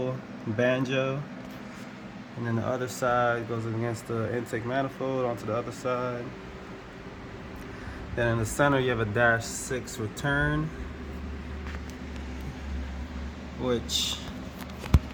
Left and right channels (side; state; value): both; identical; correlation 1.00